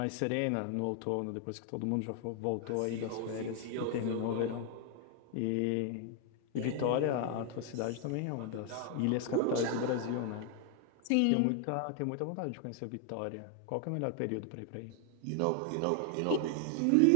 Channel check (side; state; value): both; different; correlation 0.00